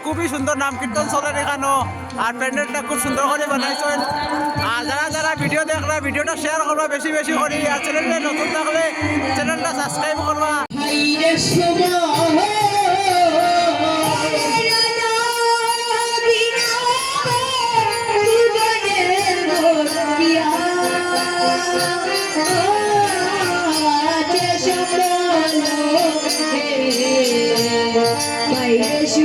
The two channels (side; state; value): both; identical; correlation 1.00